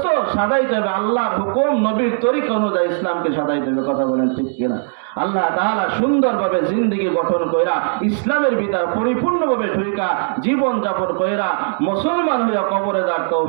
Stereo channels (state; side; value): silent; left; digital silence